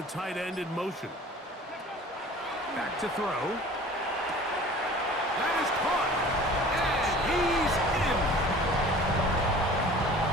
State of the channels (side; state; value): both; normal; correlation 0.44